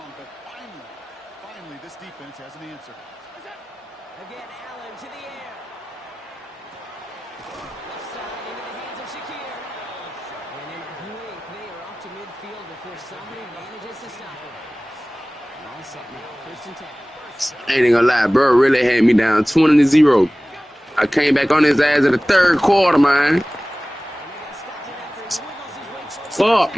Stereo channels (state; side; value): normal; both; correlation 0.98